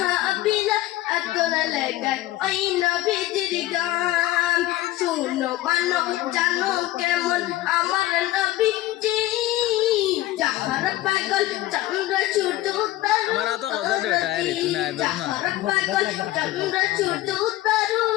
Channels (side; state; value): right; quieter; 16.2 dB